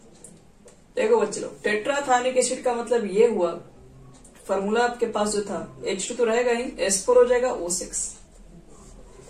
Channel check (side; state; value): both; identical; correlation 1.00